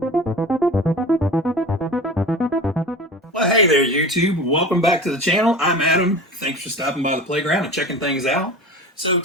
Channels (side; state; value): both; normal; correlation 0.34